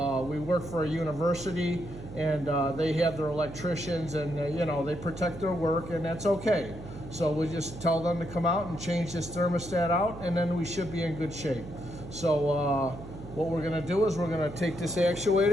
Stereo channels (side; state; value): right; noise; hum, 13 dB below the sound